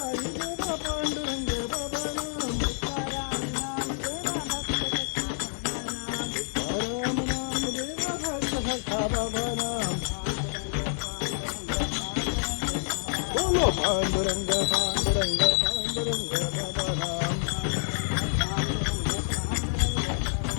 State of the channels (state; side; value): silent; right; 59 dB below the other